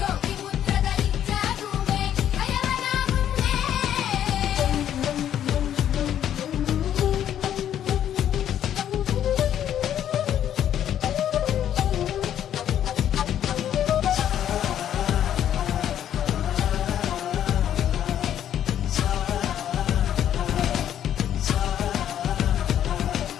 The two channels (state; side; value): quieter; right; 10.4 dB